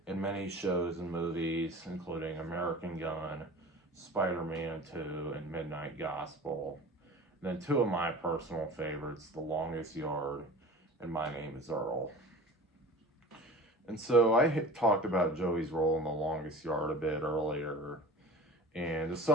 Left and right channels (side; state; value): both; normal; correlation 0.37